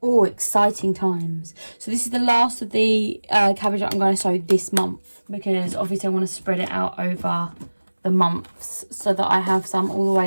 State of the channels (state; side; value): inverted; both; correlation -1.00